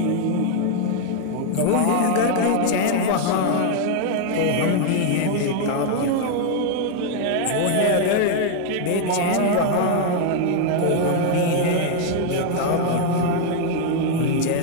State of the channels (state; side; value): different; both; correlation 0.00